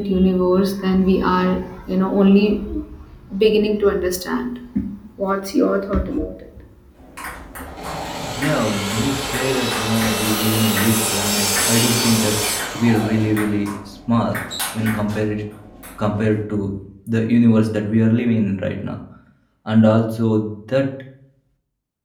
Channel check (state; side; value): identical; both; correlation 1.00